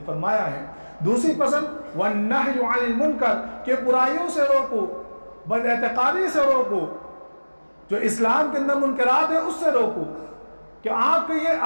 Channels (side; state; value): both; inverted; correlation -1.00